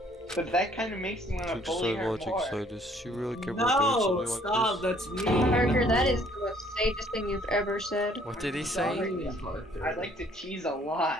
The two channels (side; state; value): both; normal; correlation 0.60